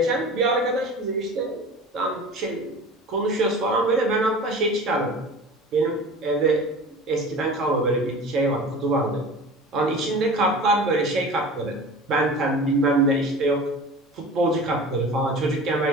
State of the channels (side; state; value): both; normal; correlation 0.38